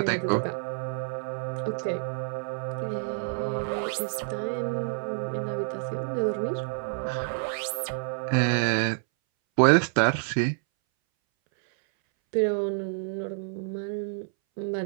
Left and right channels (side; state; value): left; silent; 59 dB below the other